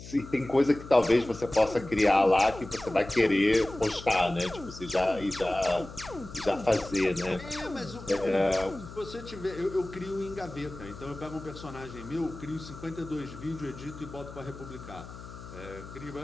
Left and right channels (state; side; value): noise; left; hum, 14 dB below the sound